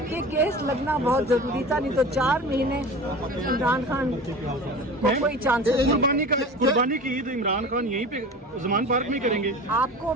یہ کیس لگنا بہت ضروری تھا، نہیں تو 4 مہینے عمران خان کو کوئی چانس نہیں۔ قربانی کی عید عمران خان یہیں پہ زمان پارک میں کریں گے؟ آپ کو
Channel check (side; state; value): both; normal; correlation 0.35